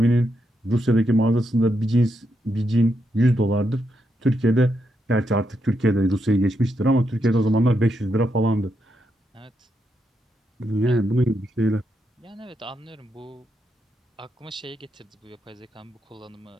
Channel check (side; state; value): both; normal; correlation 0.82